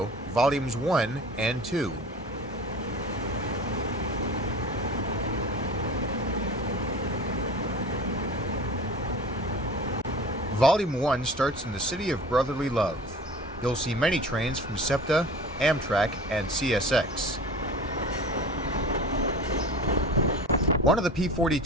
Volumes 1 and 2. Volume 1 starts in the city of brotherly love. You'll see many trains from Septa, Amtrak, and CSX. One of the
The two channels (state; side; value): normal; both; correlation 0.38